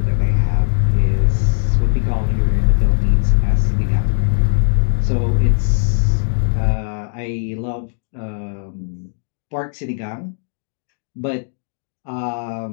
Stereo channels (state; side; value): silent; right; digital silence